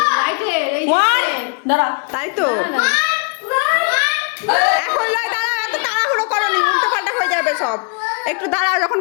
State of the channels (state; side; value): quieter; right; 36.1 dB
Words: লাইটের এই দাঁড়া তাই তো এখন লয় দাঁড়াও এত তাড়াহুড়ো করনি উল্টো পাল্টা হয়ে যাবে সব একটু দাঁড়াও যখন